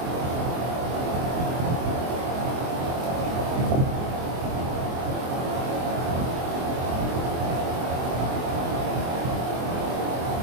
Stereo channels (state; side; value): late; left; 24 ms